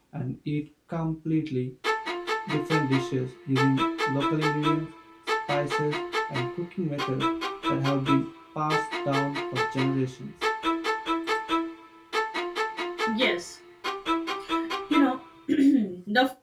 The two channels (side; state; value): both; identical; correlation 1.00